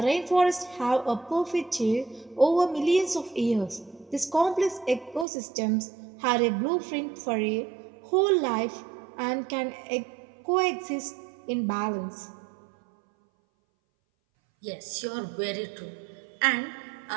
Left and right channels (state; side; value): drops out; left; at 5.2 s